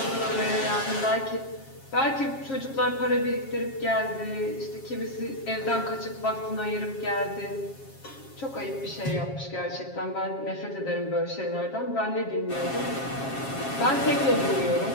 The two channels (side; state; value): right; late; 7.4 ms